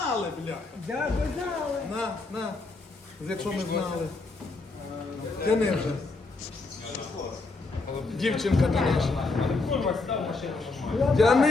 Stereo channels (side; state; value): right; quieter; 3.6 dB